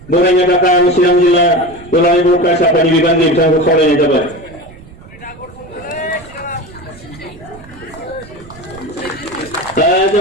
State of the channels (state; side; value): noise; right; rumble, 20 dB below the sound